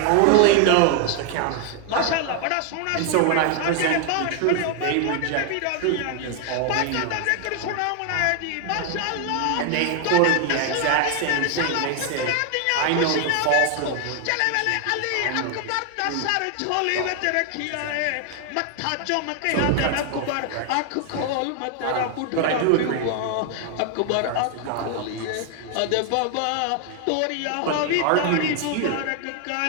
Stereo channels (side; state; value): both; different; correlation 0.00